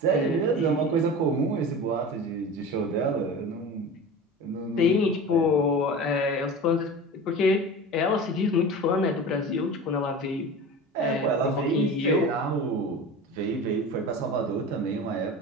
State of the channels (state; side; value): normal; both; correlation 0.33